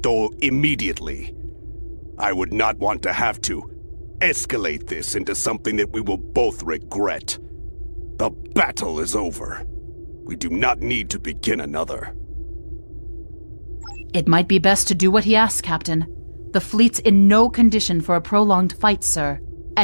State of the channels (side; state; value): both; inverted; correlation -1.00